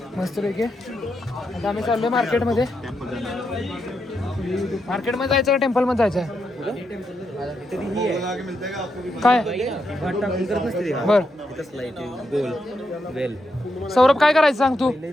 मस्त पैकी. आता आम्ही चाललोय मार्केटमध्ये. मार्केटमध्ये जायचं का टेम्पलमध्ये जायचं आहे? काय बर सौरभ काय करायचं सांग तू.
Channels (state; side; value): normal; both; correlation 0.83